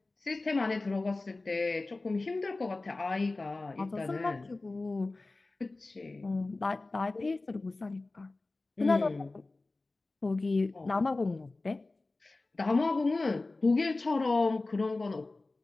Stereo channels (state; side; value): quieter; right; 3.2 dB